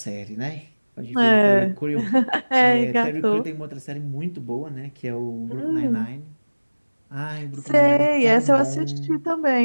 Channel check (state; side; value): inverted; both; correlation -1.00